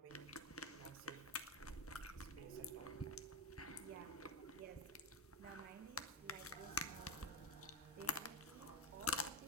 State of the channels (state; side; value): normal; both; correlation 0.14